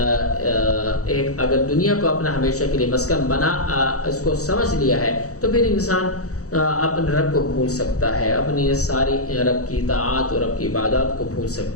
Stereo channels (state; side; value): late; right; 0.65 ms